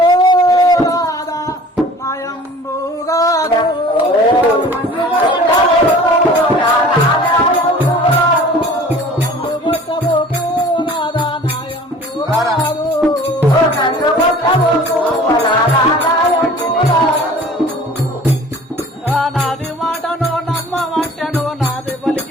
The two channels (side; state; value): both; normal; correlation 0.46